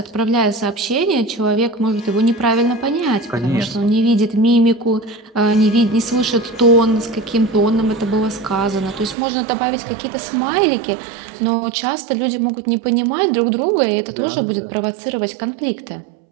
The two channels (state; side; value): drops out; left; at 9.2 s